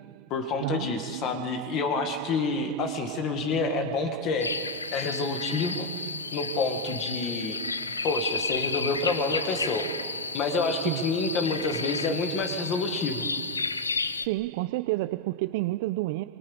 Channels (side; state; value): both; normal; correlation 0.01